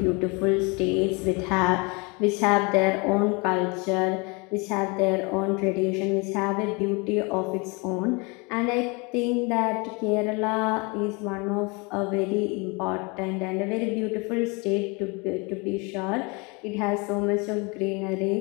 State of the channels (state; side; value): quieter; right; 29.5 dB